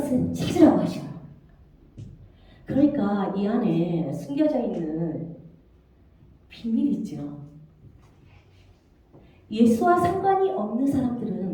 찾으라고 하셔요. 그러니까 이 안에 숨겨져 있는 비밀이 있죠. 예수와 상관이 없는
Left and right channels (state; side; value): identical; both; correlation 1.00